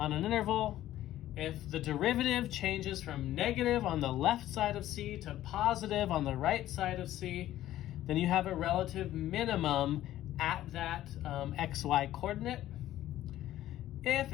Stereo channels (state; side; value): quieter; right; 13.7 dB